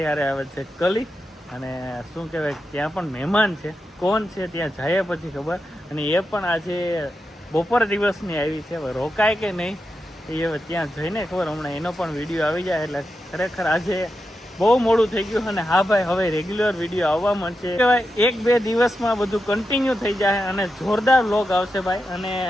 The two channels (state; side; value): normal; both; correlation 0.88